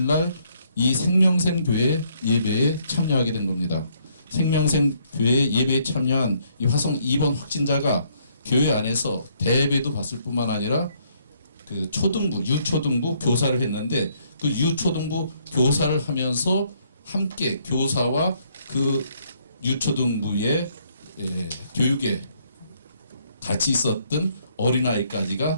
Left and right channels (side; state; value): both; inverted; correlation -0.68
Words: 날 이 생명샘교회 예배에 참여하게 된 겁니다. 생명샘교회 예배에 참여한 이 화성 2번 확진자가 교회 안에서 대예배도 봤을 뿐만 아니라 그 초등부, 유초등부 교사를 했는데 그 유초등부 교사를 하면서 함께 교사와 그 유초등부의 교육에 같이 있었던